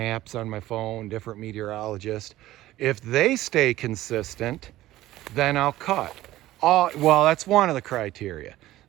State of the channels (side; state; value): left; quieter; 15.6 dB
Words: on my phone, different meteorologists, if they stay consistent, then I'll cut. Well, that's one of the criteria.